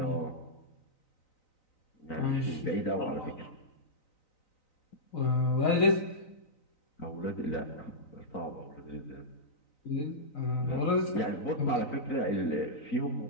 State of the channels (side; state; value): right; late; 3.9 ms